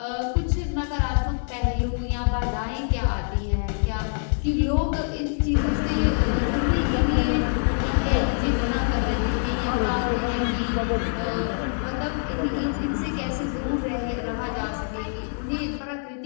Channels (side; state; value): right; silent; 62 dB below the other